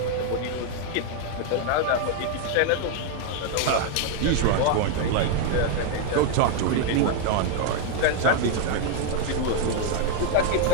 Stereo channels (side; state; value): both; different; correlation 0.00